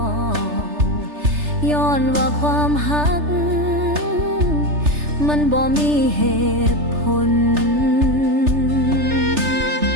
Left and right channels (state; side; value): late; left; 3.3 ms